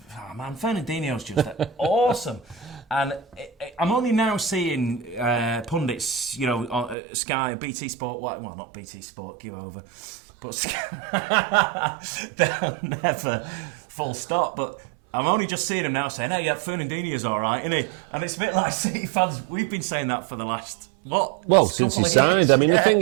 Oh man, Fernandinho's just awesome, and I'm only now seeing pundits, on Sky, BT Sport. Well, not BT Sport, give over, but Sky, they'll never full stop, but. I'm only just seeing him now saying, Fernandinho's all right, isn't he? And it's a bit like City fans. We've been saying that for the last, since he signed. I mean, the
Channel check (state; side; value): drops out; left; at 7.0 s